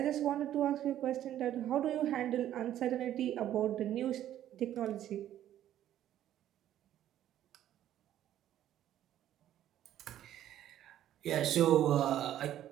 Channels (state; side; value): quieter; left; 11.9 dB